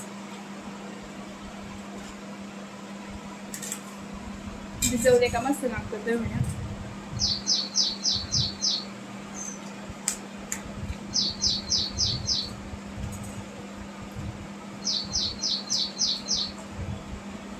भिजवले का मस्त लागतं दहीवड्या.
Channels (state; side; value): identical; both; correlation 1.00